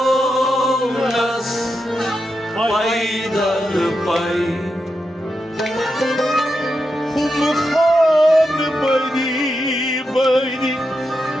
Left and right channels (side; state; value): both; normal; correlation 0.87